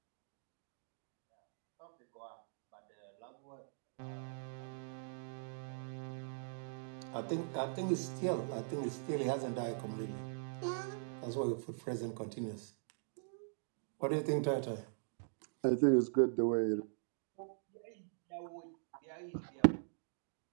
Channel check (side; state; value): left; silent; digital silence